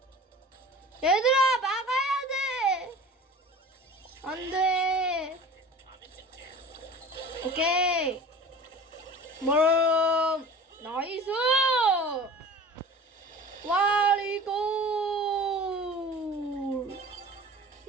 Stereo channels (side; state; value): both; normal; correlation 0.40